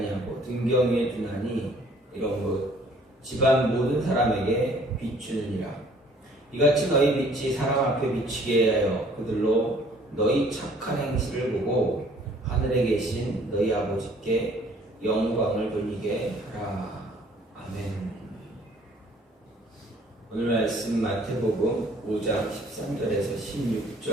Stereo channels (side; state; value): both; normal; correlation 0.57